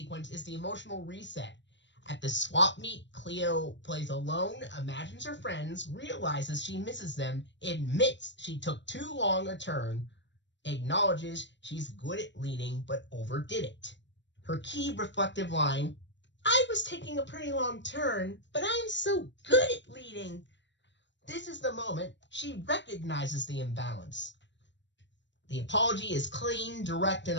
is the emotional reset. At the swap meet, Cleo plays alone, imagines her friends, realizes she misses them, admits she took too long a turn, acknowledges she's good at leading but overdid it. Her key reflective line, "I was taking a pretty long turn, but I'm so good at leading." This is the moment she recognizes the imbalance. The apology is clean, direct, and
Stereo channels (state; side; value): late; right; 0.53 ms